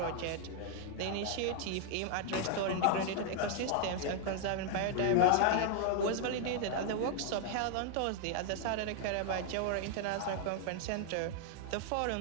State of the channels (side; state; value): both; different; correlation 0.00